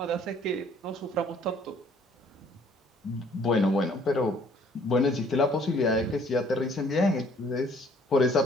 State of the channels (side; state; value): both; normal; correlation 0.59